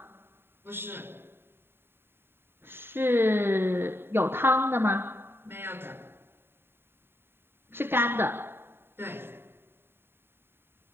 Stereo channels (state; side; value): late; left; 0.11 ms